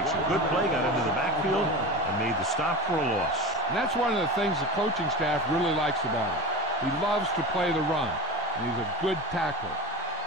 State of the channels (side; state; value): both; normal; correlation 0.30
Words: a good play, got into the backfield, and made the stop for a loss. And that's one of the things the coaching staff really likes about him. He loves to play the run, and he's a good tackler.